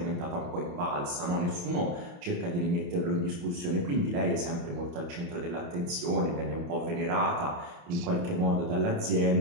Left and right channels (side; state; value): left; late; 29 ms